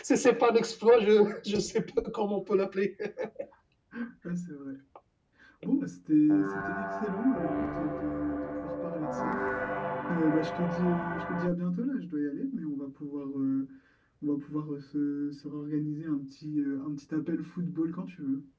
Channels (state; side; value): identical; both; correlation 1.00